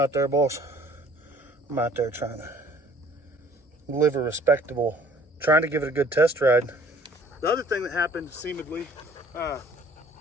there, boss. I'm out there trying to live a respectable, trying to give it a good test ride. The other thing that happened, seemingly,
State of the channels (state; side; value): normal; both; correlation 0.55